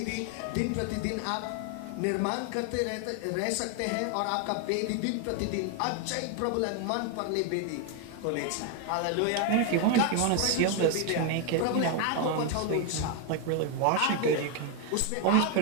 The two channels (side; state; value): both; different; correlation 0.01